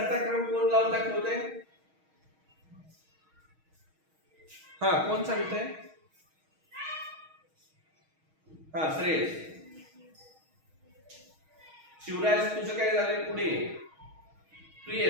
क्रम कोण लावून दाखवतोय? हा, कोण सांगतंय? हा, श्रेयस. शिवराज तुझं काय झालंय? पुढे तू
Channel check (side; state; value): left; late; 6.3 ms